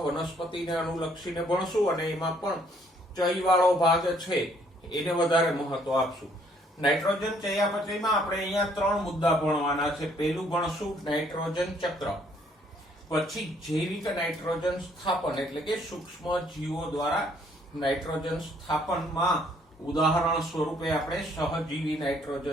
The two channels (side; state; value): both; normal; correlation 0.65